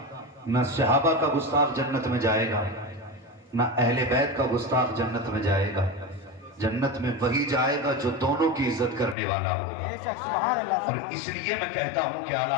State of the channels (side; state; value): right; drops out; at 9.2 s